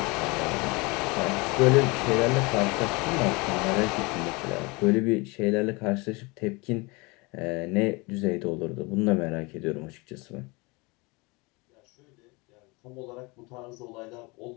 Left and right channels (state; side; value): quieter; right; 26.4 dB